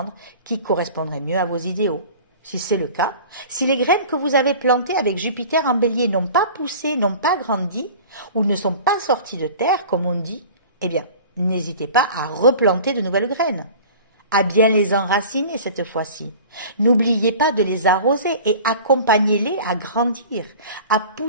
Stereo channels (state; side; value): inverted; both; correlation -0.41